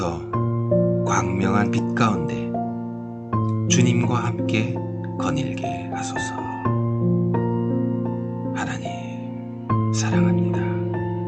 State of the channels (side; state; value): both; identical; correlation 1.00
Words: 광명한 빛 가운데 주님과 함께 거닐게 하소서. 하나님, 사랑합니다.